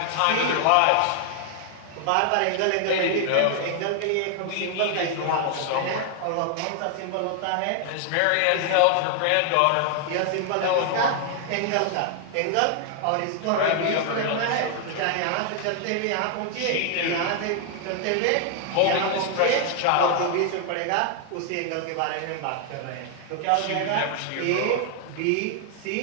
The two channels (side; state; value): both; different; correlation 0.00